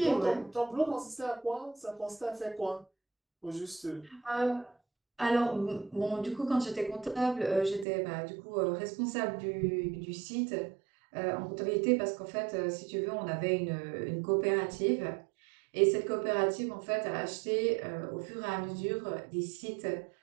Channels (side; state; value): left; drops out; at 7.9 s